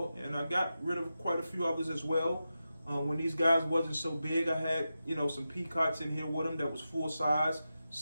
I got rid of quite a few others as well. When these guys wasn't so big, I had, some peacocks in here with them that was full size,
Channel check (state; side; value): inverted; both; correlation -0.91